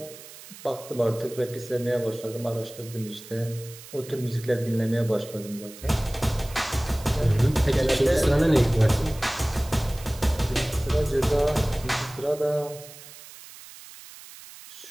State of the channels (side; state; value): right; noise; hiss, 17 dB below the sound